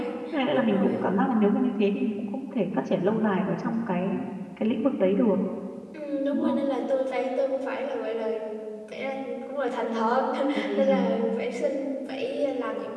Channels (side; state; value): both; identical; correlation 1.00